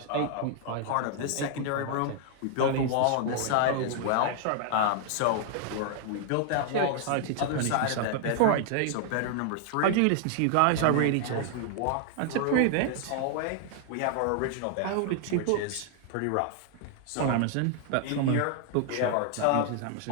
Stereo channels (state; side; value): different; both; correlation 0.00